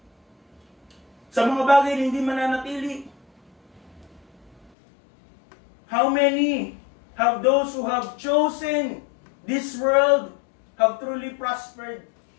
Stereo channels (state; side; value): drops out; right; at 4.7 s